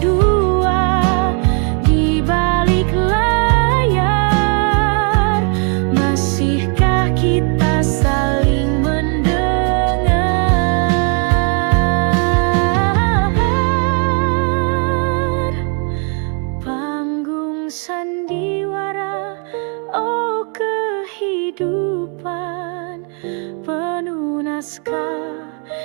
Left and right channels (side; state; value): left; quieter; 38.6 dB